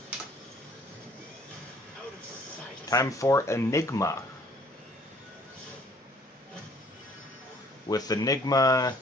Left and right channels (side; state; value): both; normal; correlation 0.58